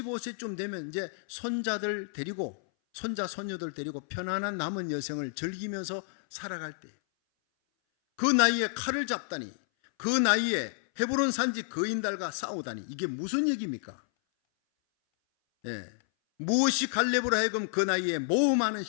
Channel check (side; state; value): right; silent; 58 dB below the other